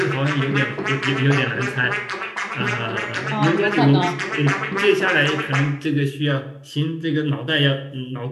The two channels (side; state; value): both; identical; correlation 1.00